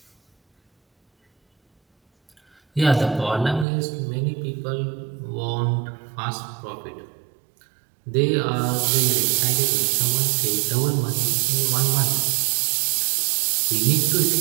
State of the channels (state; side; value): drops out; left; at 3.7 s